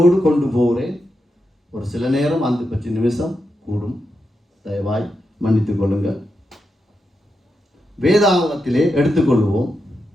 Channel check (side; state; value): both; normal; correlation 0.86